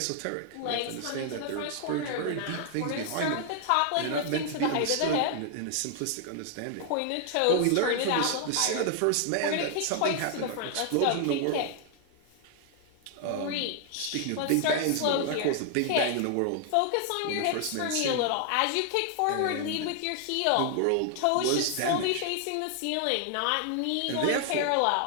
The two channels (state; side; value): different; both; correlation 0.00